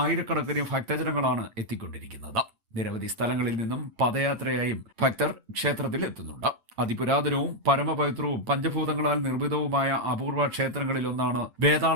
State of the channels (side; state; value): left; late; 8.9 ms